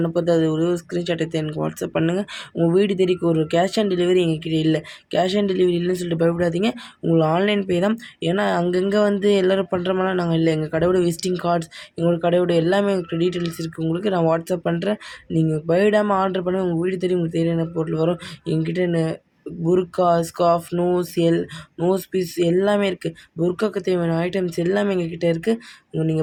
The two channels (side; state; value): both; identical; correlation 1.00